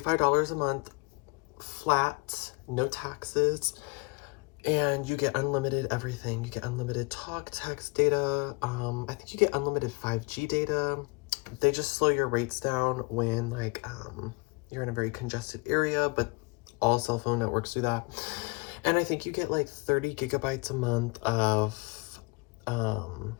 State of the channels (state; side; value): quieter; right; 28.0 dB